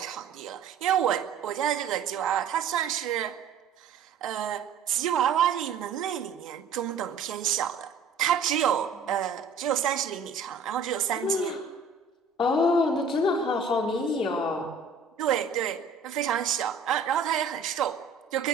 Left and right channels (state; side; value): quieter; left; 4.7 dB